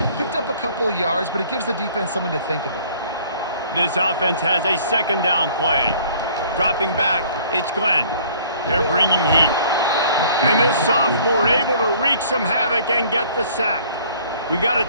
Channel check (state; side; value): inverted; both; correlation -0.55